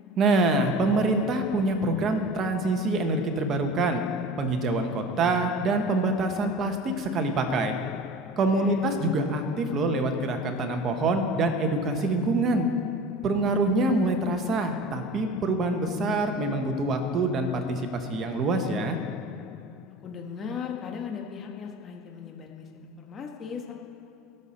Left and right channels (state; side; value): normal; both; correlation 0.38